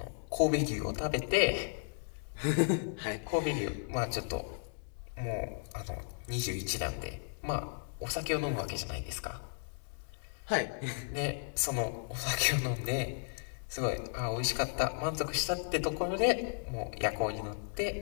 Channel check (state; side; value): silent; right; digital silence